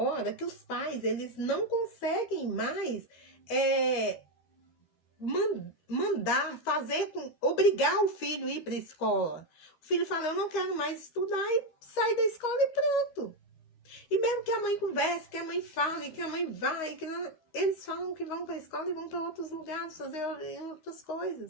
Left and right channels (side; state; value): right; late; 13 ms